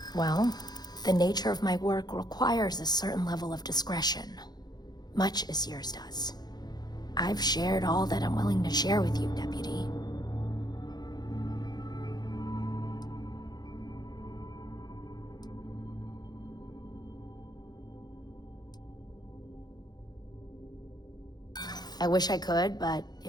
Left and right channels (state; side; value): late; right; 0.20 ms